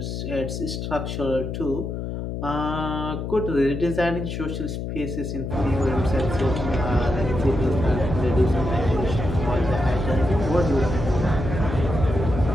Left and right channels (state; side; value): noise; left; hum, 5 dB below the sound